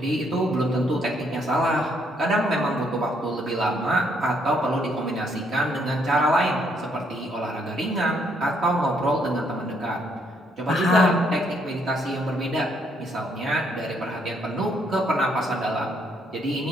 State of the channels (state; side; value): normal; both; correlation 0.71